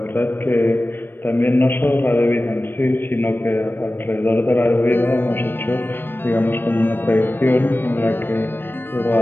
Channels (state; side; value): late; right; 0.095 ms